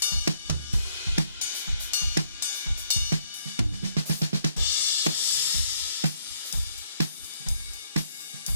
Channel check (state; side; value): inverted; both; correlation -0.70